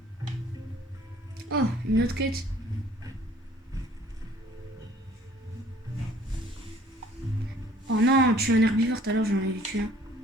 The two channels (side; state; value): both; normal; correlation 0.55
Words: Oh, une autre quête. Oh non, tu es un herbivore, tout à l'heure j'en ai tué un.